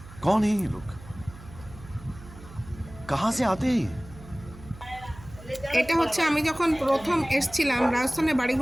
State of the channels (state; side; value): noise; right; hum, 18 dB below the sound